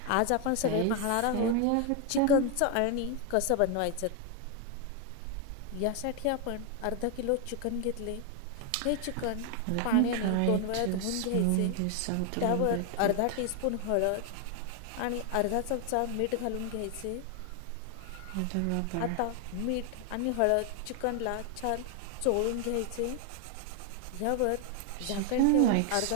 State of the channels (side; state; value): both; different; correlation 0.00